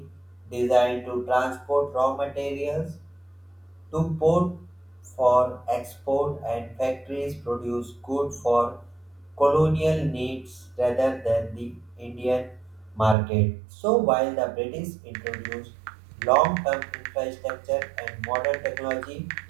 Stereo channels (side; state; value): left; drops out; at 13.2 s